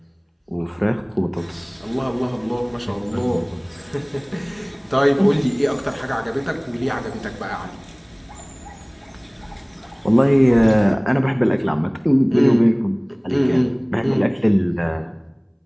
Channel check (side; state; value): both; identical; correlation 1.00